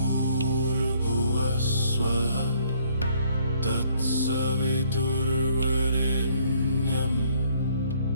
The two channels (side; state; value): both; inverted; correlation -0.63